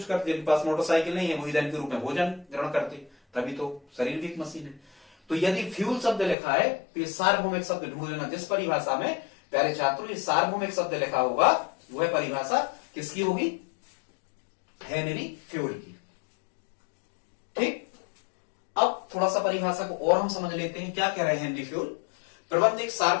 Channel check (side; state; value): right; drops out; at 6.4 s